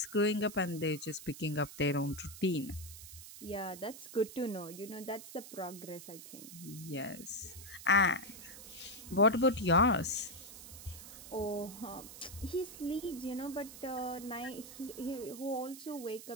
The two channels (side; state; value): right; noise; hiss, 14 dB below the sound